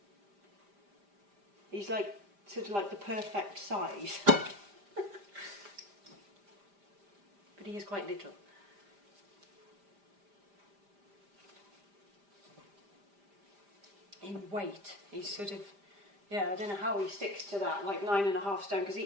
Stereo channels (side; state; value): left; late; 5.0 ms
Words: He's like, sort of like the perfect size. But he is quite little. In weight, he's sort of, yeah, I don't know how he sticks to that, like 9.5 stone, because he